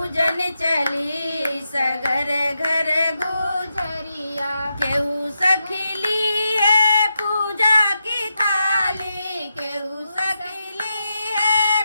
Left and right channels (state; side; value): inverted; both; correlation -0.87